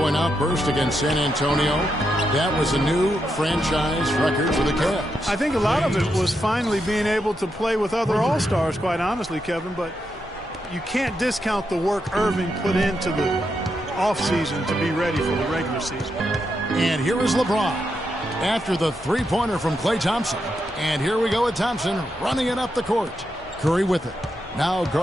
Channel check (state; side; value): normal; both; correlation 0.83